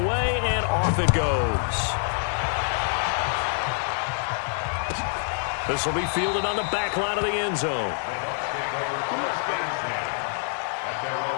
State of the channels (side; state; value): right; silent; 61 dB below the other